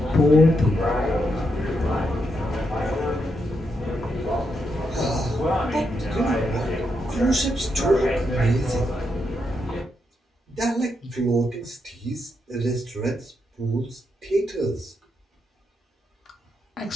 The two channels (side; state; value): both; normal; correlation 0.81